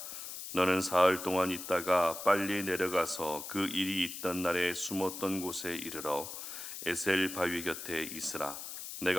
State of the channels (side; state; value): left; noise; hiss, 9 dB below the sound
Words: 너는 사흘 동안 있다가 빨리 내려가서 그 일이 있던 날에 숨었던 곳에 이르러 에셀 바위 곁에 있으라.